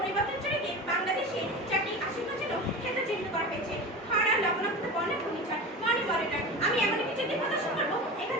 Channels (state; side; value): normal; both; correlation 0.30